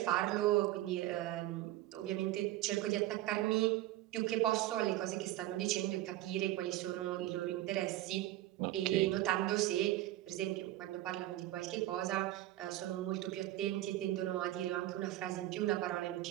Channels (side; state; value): left; quieter; 15.2 dB